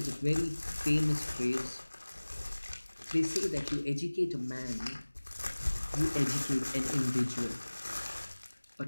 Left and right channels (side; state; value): both; inverted; correlation -1.00